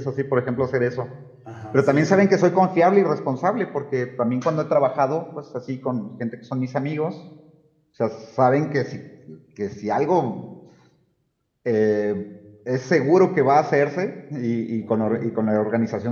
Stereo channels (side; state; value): both; identical; correlation 1.00